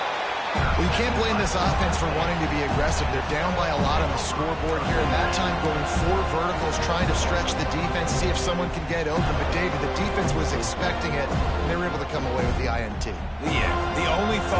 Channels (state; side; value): identical; both; correlation 1.00